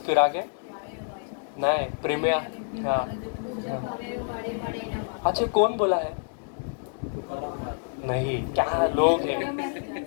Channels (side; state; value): right; silent; digital silence